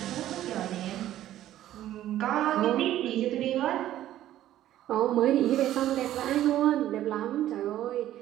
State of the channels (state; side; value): quieter; left; 12.9 dB